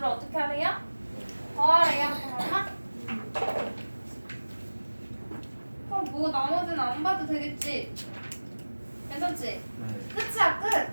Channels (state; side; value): inverted; both; correlation -1.00